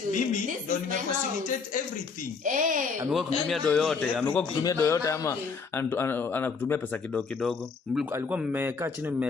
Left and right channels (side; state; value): right; quieter; 5.0 dB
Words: mimi ndo nimefacilitate everything. Amekuwa kutumia do yote, ama anakutumia pesa kidogo. Alikuwa mmekaa chini